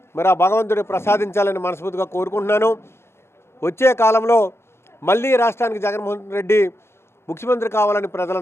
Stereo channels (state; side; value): late; right; 0.12 ms